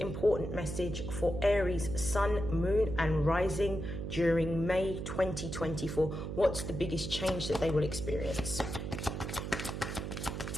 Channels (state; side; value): noise; right; hum, 5 dB below the sound